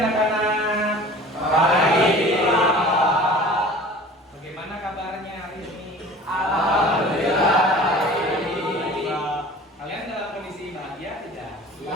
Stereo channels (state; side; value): normal; both; correlation 0.43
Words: Pagi. Bagaimana kabarnya hari ini? Alhamdulillah. Kalian dalam kondisi bahagia tidak? Iya.